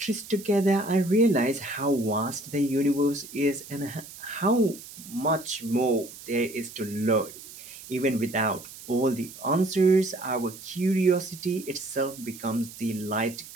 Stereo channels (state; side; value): noise; right; hiss, 16 dB below the sound